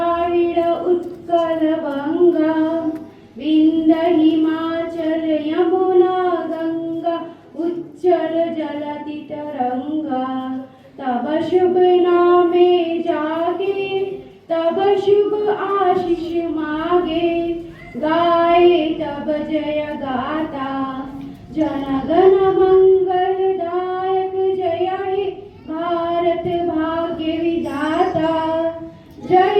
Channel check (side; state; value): both; identical; correlation 1.00